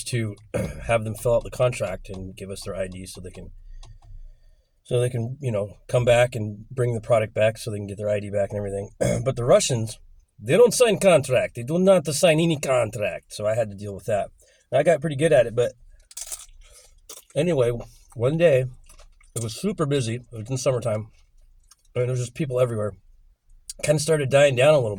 to have them fill out the contract and give us their ID so they can, come back and bring the product back so they can get their ID back and everything. But the Russians, they don't sign contract. They do not sign any contract. So I had to deal with that. And I got pretty good at it. But anyway, one day, it was super busy. It was in summertime. And there was just people everywhere. Kind of started dying down a little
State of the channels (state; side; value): identical; both; correlation 1.00